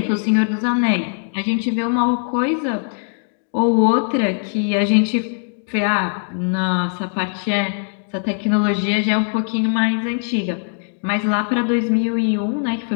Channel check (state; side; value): silent; right; 58 dB below the other